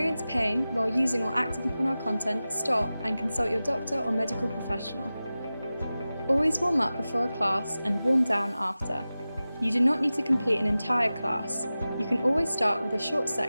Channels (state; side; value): inverted; both; correlation -0.95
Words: pain while using or acting upon our content, stop and consult your doctor or medical professional. Always warm up before a class and warm down after. You do not need to complete an entire class. You can always start with a short